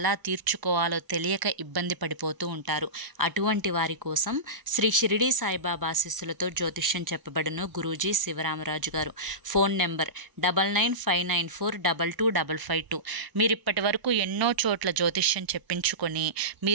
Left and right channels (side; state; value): left; late; 1.0 ms